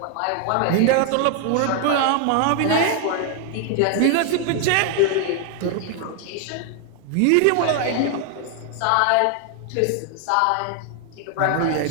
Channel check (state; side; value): different; both; correlation 0.00